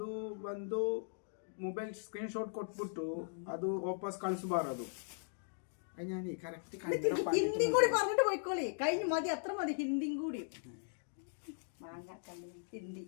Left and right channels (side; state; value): right; silent; digital silence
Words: ಒಂದು ಮೊಬೈಲ್ ಸ್ಕ್ರೀನ್ ಶಾಟ್ ಕೊಟ್ಬಿಟ್ಟು ಅದು ವಾಪಸ್ ಕಳಿಸಬಾರದು. ഞാൻ കറക്റ്റ് ഹിന്ദി കൂടി പറഞ്ഞിട്ട് പോയിക്കോളി. കഴിഞ്ഞു മതി, അത്ര മതി. ഹിന്ദിയും കൂടി. हिंदी